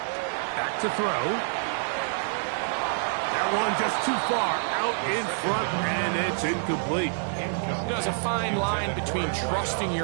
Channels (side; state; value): left; silent; 60 dB below the other